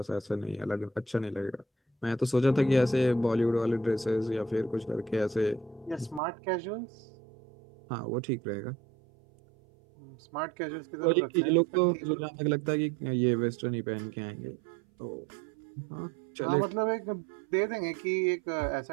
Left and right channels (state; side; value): drops out; left; at 6.2 s